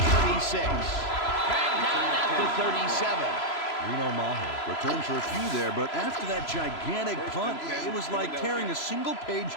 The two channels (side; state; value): right; late; 3.0 ms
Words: Dragged down at the 37. Reno Mahe returned for a few there, but after that gigantic punt, it was like tearing a single